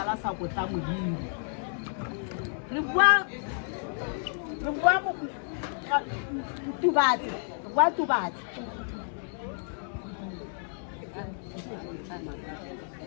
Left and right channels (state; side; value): silent; right; digital silence